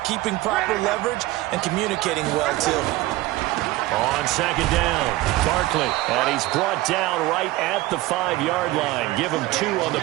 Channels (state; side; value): quieter; left; 17.9 dB